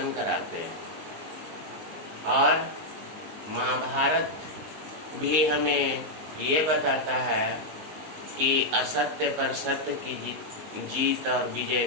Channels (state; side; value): late; left; 19 ms